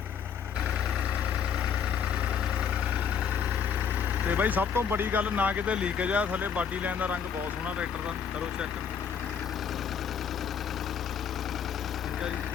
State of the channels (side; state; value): right; quieter; 7.2 dB